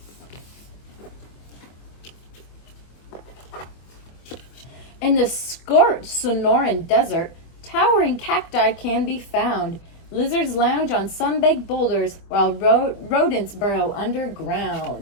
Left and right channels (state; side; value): late; right; 24 ms